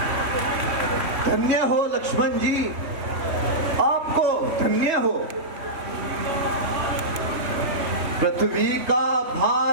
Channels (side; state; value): left; late; 3.2 ms